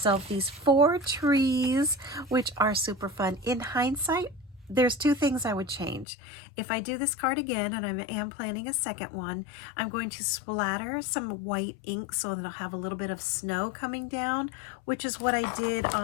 these 4 trees, which are super fun. In hindsight, there's 2 things I would change. If I do this card again, and I am planning a second one, I'm going to splatter some white ink so that I'll have a little bit of snow coming down, which is what I did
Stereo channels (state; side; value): drops out; right; at 6.1 s